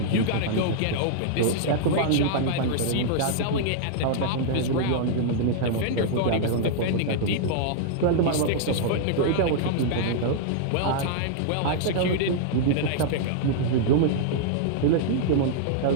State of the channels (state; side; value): different; both; correlation -0.01